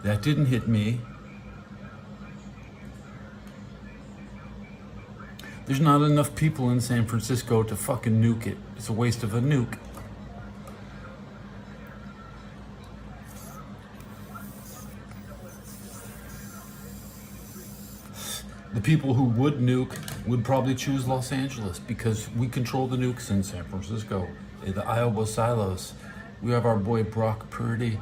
That didn't hit me. There's not enough people in San Francisco to fucking nuke it. It's a waste of a nuke. The people who would nuke would probably choose Los Angeles because we control the nukes in San Francisco. The Iowa silos. We have our boy Brock Purdy,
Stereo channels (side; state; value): both; identical; correlation 1.00